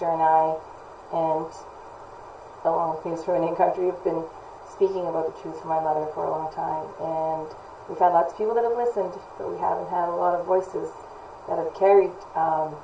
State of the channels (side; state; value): both; identical; correlation 1.00